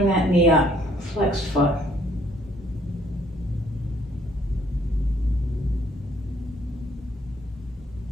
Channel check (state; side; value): normal; both; correlation 0.64